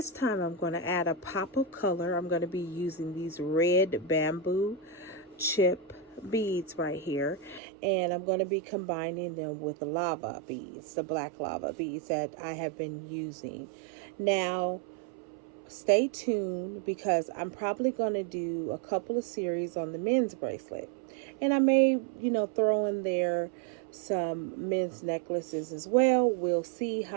time I'm going to add a pop of color. I'm going to be using these red bamboo chip beads right here, and I'm going to be combining them with the lava beads, the black lava beads that I have been using. Now, stay tuned because I'm probably going to do a couple of series on the men's bracelet. And I may, throw in there some men's necklaces as well. We'll see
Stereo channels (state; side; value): drops out; left; at 7.6 s